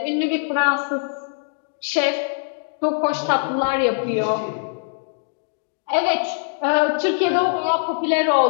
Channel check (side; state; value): right; silent; digital silence